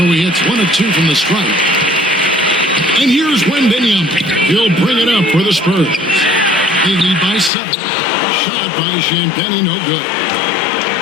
he hits 1 of 2 from the stripe. And here's Wembanyama. He'll bring it up for the Spurs. They lead by 7. A shot by Champagnie, no good.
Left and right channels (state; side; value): drops out; right; at 7.5 s